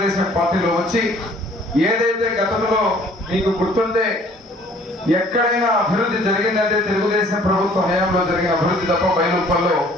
పార్టీలో వచ్చి ఏదైతే గతంలో మీకు గుర్తుంటే ఎక్కడైనా అభివృద్ధి జరిగిందంటే తెలుగుదేశం ప్రభుత్వ హయాంలో జరిగిన అభివృద్ధి తప్ప బయలుప్పల్లో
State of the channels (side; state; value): both; normal; correlation 0.56